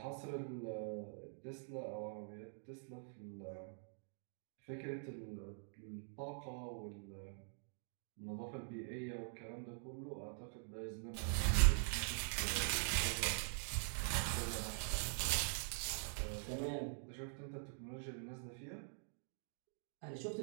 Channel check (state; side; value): silent; left; digital silence